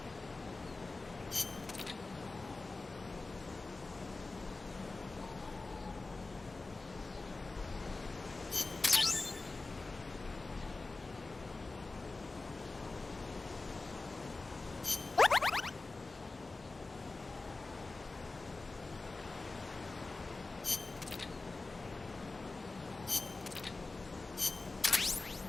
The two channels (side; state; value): right; quieter; 3.5 dB